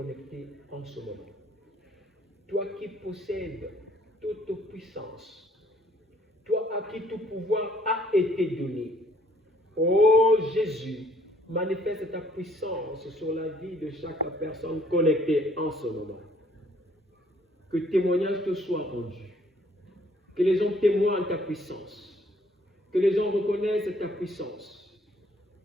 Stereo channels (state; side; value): normal; both; correlation 0.62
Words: en ce moment. Toi qui possèdes toute puissance, toi à qui tout pouvoir a été donné, ô Jésus, manifeste ta puissance sur la vie de chaque personne connectée en ce moment. Que témoignage te soit rendu. Que les gens témoignent ta puissance. Que les gens reconnaissent ta puissance.